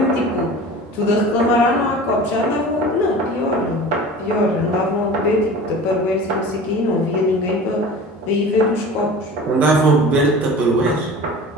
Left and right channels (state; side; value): normal; both; correlation 0.38